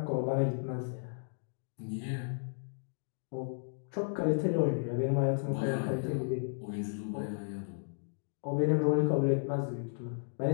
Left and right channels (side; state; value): right; silent; digital silence